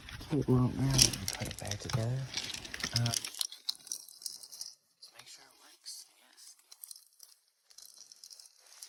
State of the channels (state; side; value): identical; both; correlation 1.00